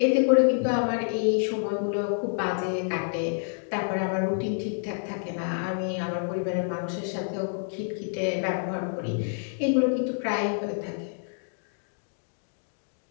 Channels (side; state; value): right; silent; digital silence